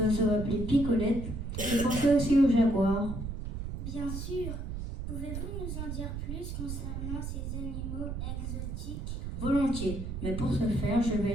appelé picolette. Je pensais aussi au jaguar. Bien sûr. Pouvez-vous nous en dire plus concernant ces animaux exotiques? Volontiers, mais pour ce faire, je vais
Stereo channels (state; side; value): noise; right; rumble, 5 dB below the sound